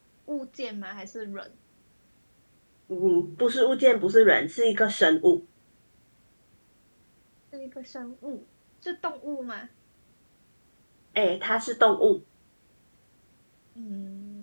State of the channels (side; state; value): both; inverted; correlation -1.00